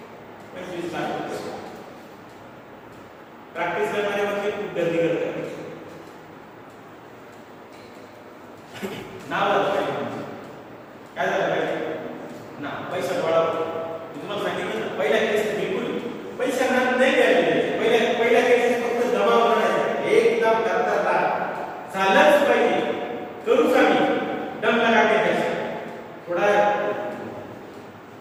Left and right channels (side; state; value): both; identical; correlation 1.00